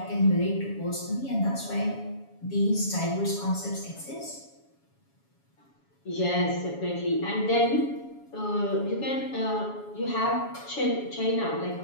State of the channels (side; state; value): right; late; 7.2 ms